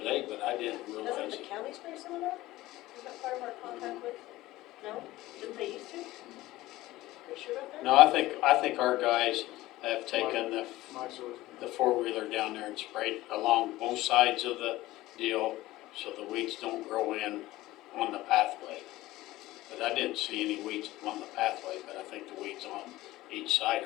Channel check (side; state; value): right; quieter; 17.3 dB